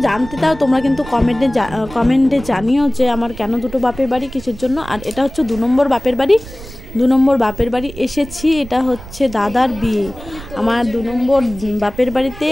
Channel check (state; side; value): noise; right; rumble, 15 dB below the sound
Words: জানতে চাও তোমরা কিন্তু কমেন্টে জানিও যে আমার কেন দুটো বাপের বাড়ি, কিসের জন্য। আর এটা হচ্ছে 2 নম্বর বাপের বাড়ি। 2 নম্বর বাপের বাড়ি এসেছি। এটা হচ্ছে দাদার বিয়ে, আমার 2 নম্বর বাপের বাড়িতে